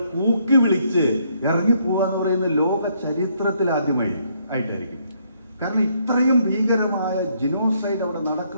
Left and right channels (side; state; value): both; inverted; correlation -0.71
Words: കൂക്കി വിളിച്ച് ഇറങ്ങിപ്പോവാന്ന് പറയുന്ന ലോക ചരിത്രത്തിൽ ആദ്യമായിട്ടായിരിക്കും. കാരണം ഇത്രയും ഭീകരമായ ജിനോസൈഡ് അവിടെ